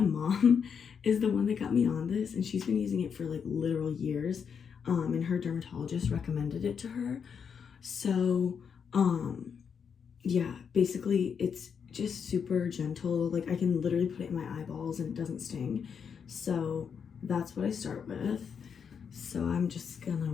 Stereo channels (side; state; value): right; quieter; 6.8 dB